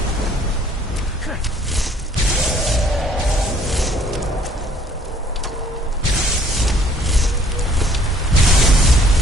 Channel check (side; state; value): both; normal; correlation 0.59